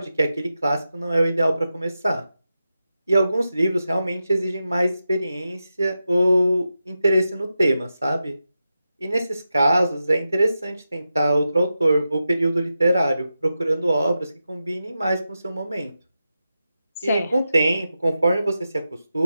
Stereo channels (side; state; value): both; inverted; correlation -0.90